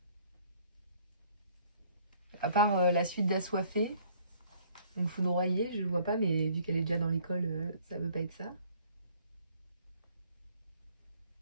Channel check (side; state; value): both; inverted; correlation -0.59